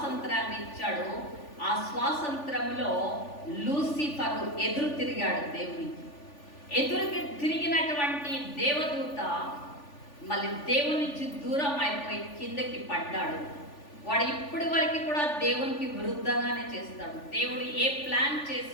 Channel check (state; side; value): late; right; 3.4 ms